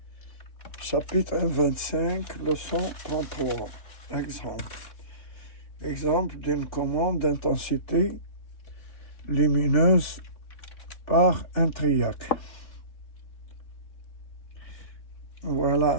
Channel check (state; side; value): late; right; 3.6 ms